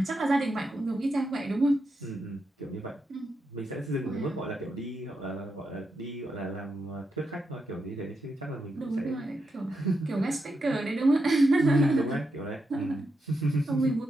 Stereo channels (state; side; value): normal; both; correlation 0.84